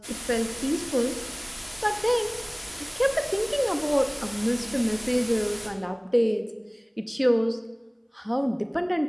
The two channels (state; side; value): identical; both; correlation 1.00